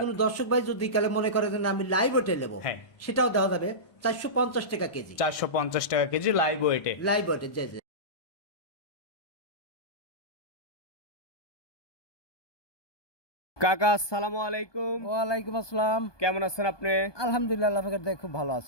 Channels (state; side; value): late; right; 1.2 ms